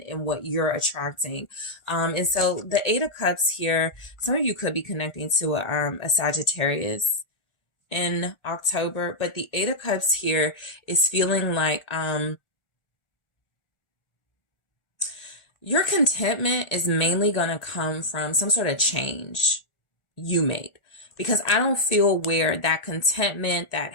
and what you're attracting. And so the Eight of Cups here, some of you could be connecting to a Sagittarius in October, but the Eight of Cups here is feeling like, your contentment is mainly going to come from some sort of change you made, because I don't feel where that contentment, that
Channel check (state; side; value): late; right; 1.4 ms